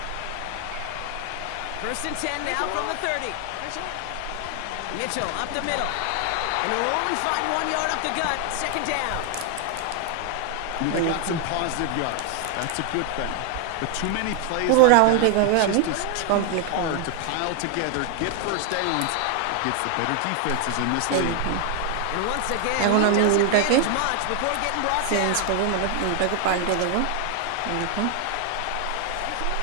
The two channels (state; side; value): different; both; correlation 0.00